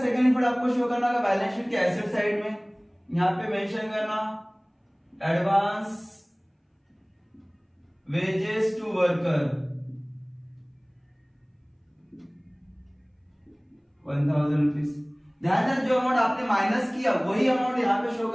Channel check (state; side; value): identical; both; correlation 1.00